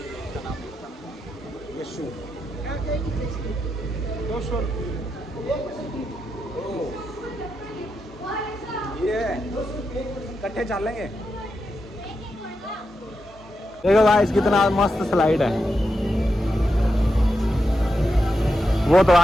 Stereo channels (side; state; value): both; normal; correlation 0.86